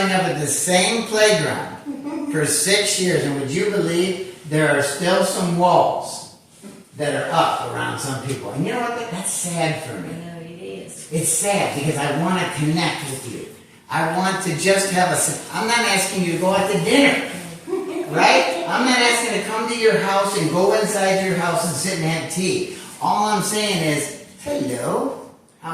up at the same playground for 6 years, and would you believe there are still some walls that are up around some people? And you know what? That's sad for me. I know it is. It's sad because I want to connect with you. I want to just have I'm not asking you to go out to dinner, right? I'm not asking to come to your house and go inside your house and sit and have tea. All I'm saying is, hello,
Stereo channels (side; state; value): both; identical; correlation 1.00